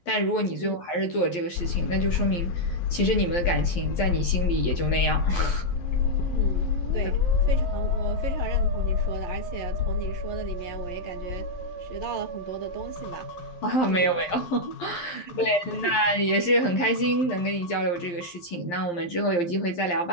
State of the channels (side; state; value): right; late; 11 ms